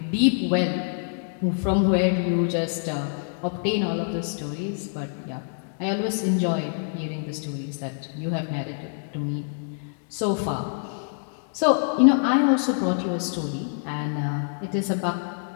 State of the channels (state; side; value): silent; right; digital silence